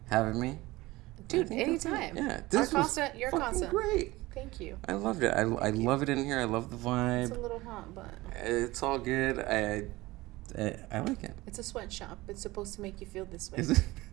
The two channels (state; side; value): quieter; left; 19.7 dB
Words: having me. Dude, anytime. Yeah. This was you're fucking great. Thank you. I loved it. I love it in here. I love the vibe. It's a little hot, but... It's all good. I like it. It's a sweatshop. It's supposed to make you feel this way. Is it?